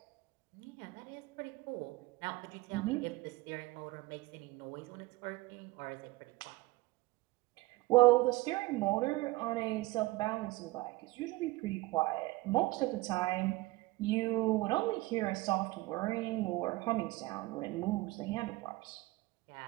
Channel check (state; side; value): quieter; left; 20.6 dB